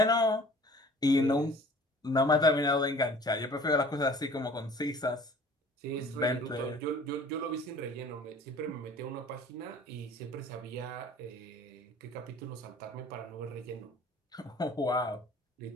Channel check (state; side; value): normal; both; correlation 0.49